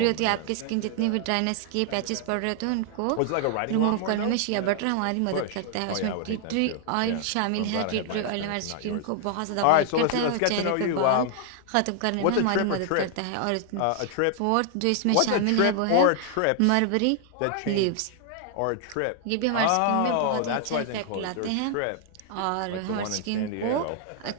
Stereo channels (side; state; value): both; different; correlation 0.00